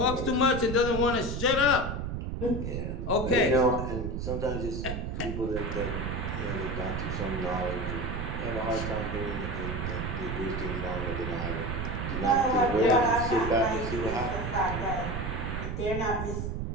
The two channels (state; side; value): noise; right; rumble, 3 dB below the sound